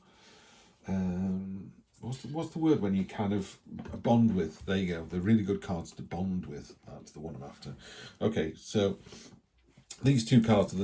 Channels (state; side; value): identical; both; correlation 1.00